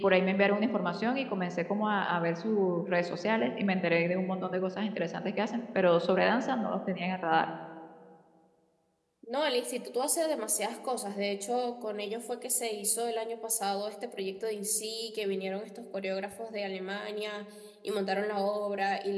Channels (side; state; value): both; identical; correlation 1.00